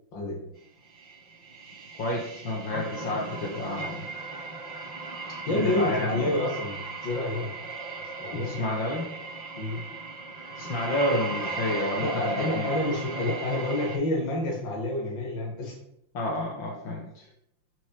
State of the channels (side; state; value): right; late; 5.8 ms